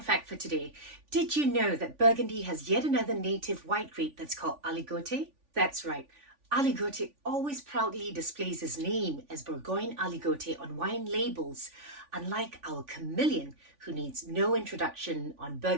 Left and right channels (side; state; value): left; late; 3.5 ms